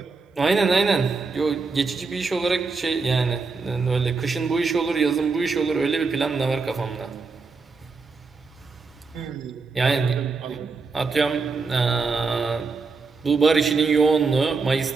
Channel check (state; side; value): quieter; left; 4.4 dB